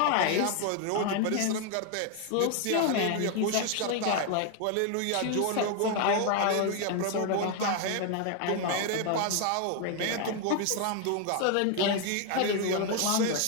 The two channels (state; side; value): different; both; correlation 0.01